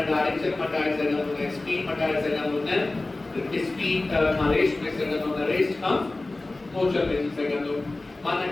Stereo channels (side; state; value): right; quieter; 3.0 dB